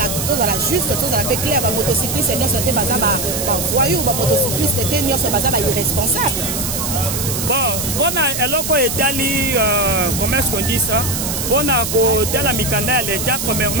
la juste tous à la peu clair ba motocycliste et non c'était bazar voyou, motocycliste était irresponsable. Bon, on a eloko etali, comment est-ce qu'on dit ça? On a côté la mikanda à l'état,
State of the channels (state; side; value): noise; right; hiss, 3 dB below the sound